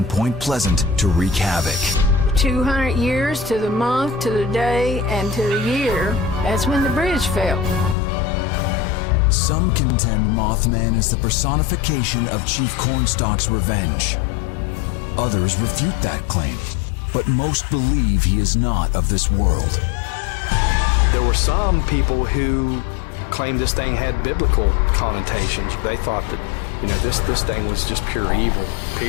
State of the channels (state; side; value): drops out; right; at 8.0 s